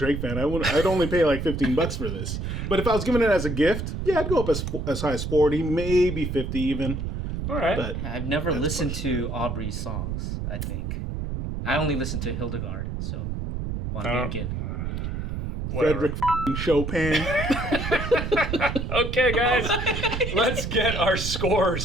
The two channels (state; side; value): noise; right; rumble, 4 dB below the sound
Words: fan, I'd only pay like $15 for this. But if I was giving it as a gift, I'd go up as high as 40, maybe 50 even. All right. But I've never listened to Aubrey's songs, I think. I only listened to Hildegard, so Von Däniken. Frederick Chopin. Okay, guys, let's get our